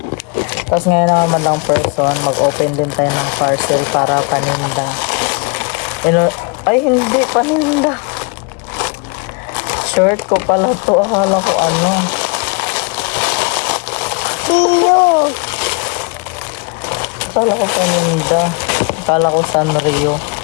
Tapos ngayon naman madlang person, mag-open din tayo ng parcel para paninda. Ay, hindi paninda. Shirt ko pala to. Akala ko Iyo. Akala ko paninda. Akala ko Sanrio.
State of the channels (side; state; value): right; quieter; 32.9 dB